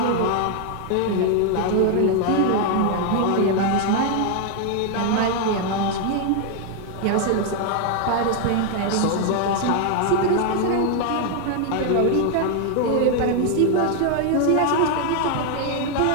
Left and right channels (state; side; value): different; both; correlation 0.00